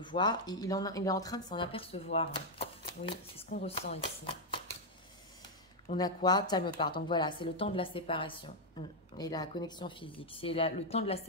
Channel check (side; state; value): both; normal; correlation -0.01